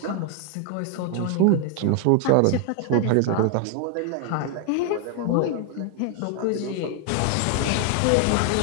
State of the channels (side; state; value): both; different; correlation 0.00